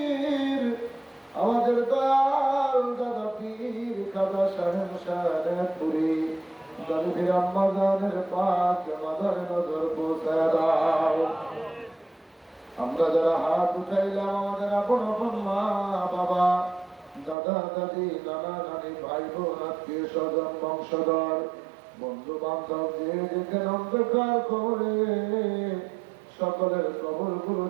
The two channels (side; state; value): left; drops out; at 17.4 s